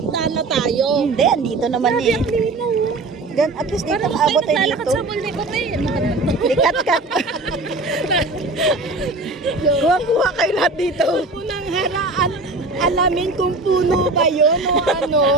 na tayo. Hindi, andito naman Grabe, eh. ang linaw. Then, at least dito Parang abot tayo naglalakad dito. sa multi ko eh. Likat-kat. Kuha-kuha kayo lahat dito. Unang haraan, alamin kung puno ba yun o ano.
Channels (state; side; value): quieter; left; 3.2 dB